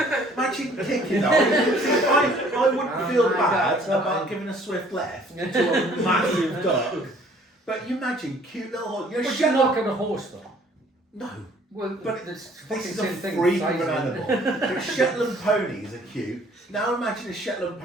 Imagine kicking that. I wouldn't feel my bad God. about giving a swift left to a massive duck. But you imagine cute little horse. You're a But you're Shetland. not going to horse though. No. Well, But it's This is a same thing. freak of size an of it. animal. But Shetland ponies are cute. Now imagine a Shetland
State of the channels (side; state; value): both; normal; correlation 0.57